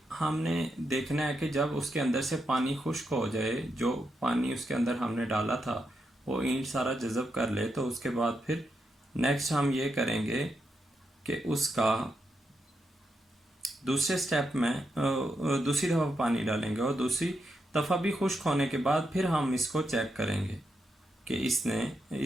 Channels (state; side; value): normal; both; correlation 0.84